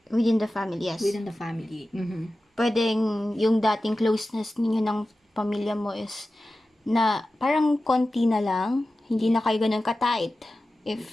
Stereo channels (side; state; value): both; normal; correlation 0.94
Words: Within the family, yes. within the family. Pwedeng yung dating closeness ninyo ng pamilya mo is na parang konti na lang, hindi na kayo ganun ka-tight.